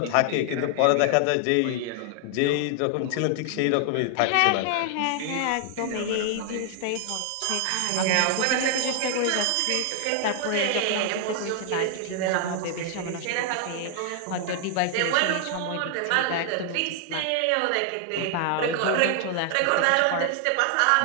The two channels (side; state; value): both; different; correlation 0.00